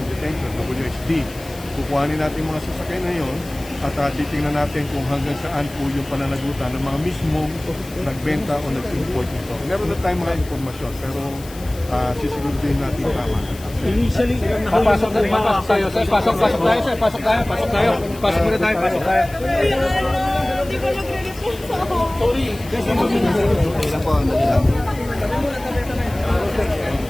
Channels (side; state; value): left; noise; hiss, 19 dB below the sound